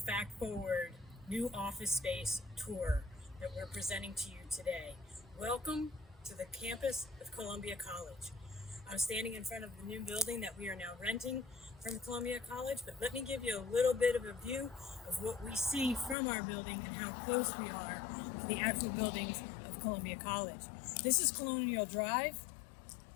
Forward new office space tour that we're presenting to you today. Welcome to the campus of Columbia College. I'm standing in front of the new building that we are now renting from Columbia College, but let me give you a little bit of a view of what we see from our building and how close we are to the actual buildings of Columbia College. This is Colonial Drive.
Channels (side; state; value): right; drops out; at 16.2 s